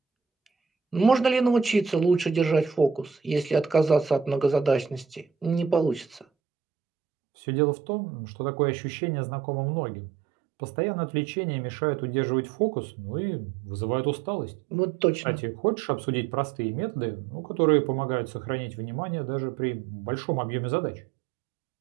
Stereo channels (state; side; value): drops out; left; at 6.2 s